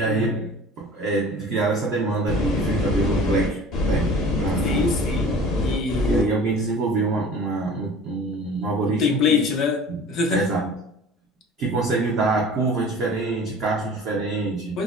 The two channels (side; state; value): both; normal; correlation 0.43